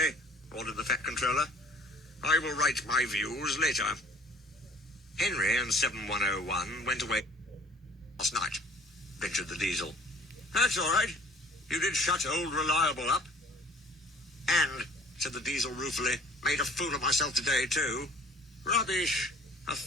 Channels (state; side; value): normal; both; correlation 0.51